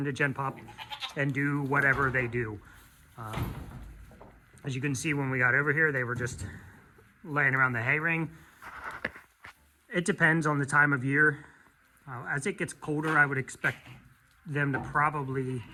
Gen Pop and do whatever they do. As you can see, when we got over here, they were just laying around the hay ring. It depends on the time of year. As it gets colder, I would expect them to probably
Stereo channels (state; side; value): identical; both; correlation 1.00